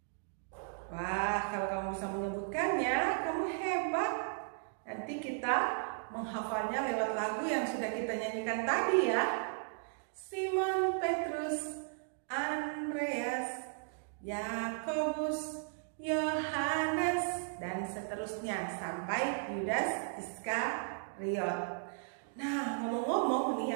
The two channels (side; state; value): left; silent; digital silence